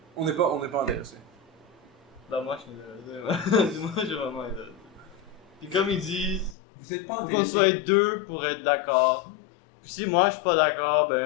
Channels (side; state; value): right; drops out; at 6.6 s